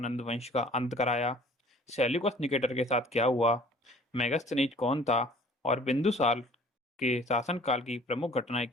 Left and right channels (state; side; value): normal; both; correlation 0.52